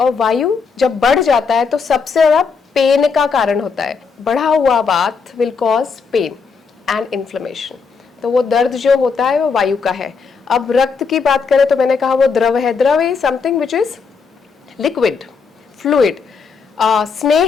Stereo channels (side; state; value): right; quieter; 5.3 dB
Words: वायु जब बढ़ जाता है तो सबसे ज्यादा पेन का कारण होता है। बढ़ा हुआ vata will cause pain and inflammation. तो वो दर्द जो होता है वो वायु का है। अब रक्त की बात करें तो मैंने कहा वो द्रव है। द्रव is something which is liquid, fluid.